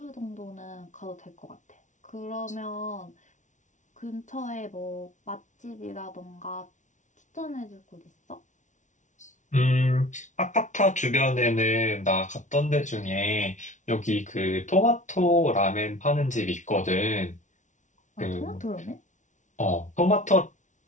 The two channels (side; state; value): right; late; 0.36 ms